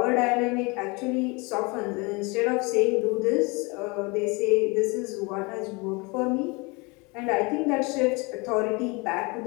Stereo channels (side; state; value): right; quieter; 27.8 dB